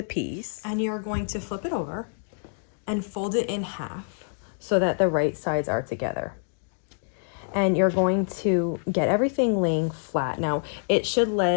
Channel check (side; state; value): right; silent; digital silence